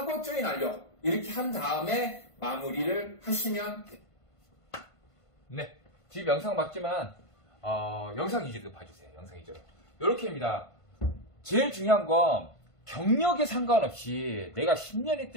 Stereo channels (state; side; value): late; right; 1.5 ms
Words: 조인 완료 이렇게 한 다음에 마무리를 하시면 됩니다. 네, 지금 영상 맞지만 영상 위주로 봐주세요. 영상 위주로 이렇게입니다. 제일 중요한 건 경력에 상관없이 내가 10년